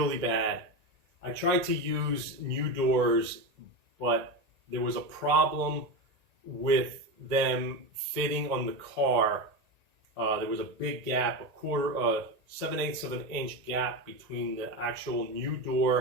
bad. I tried to use new doors, but there was a problem with them fitting on the car. There was a big gap, 7/8 of an inch gap between the actual new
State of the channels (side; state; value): left; late; 1.9 ms